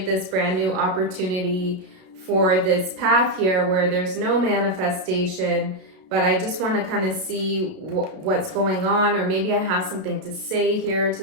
this brand new opportunity for this path here where there's no manifestation, but I just want to kind of see what's going on, or maybe I have something to say here to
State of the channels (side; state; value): left; late; 32 ms